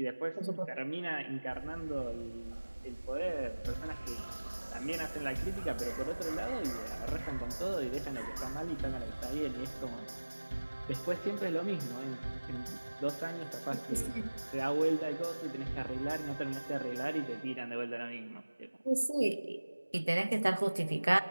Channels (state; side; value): inverted; both; correlation -1.00